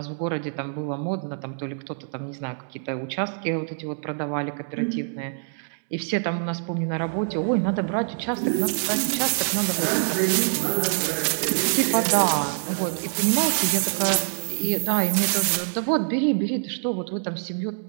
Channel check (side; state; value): left; silent; digital silence